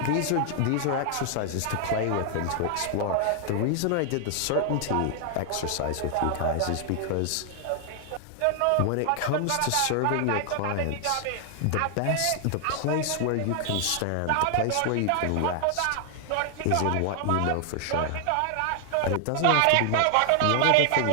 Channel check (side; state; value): both; different; correlation 0.00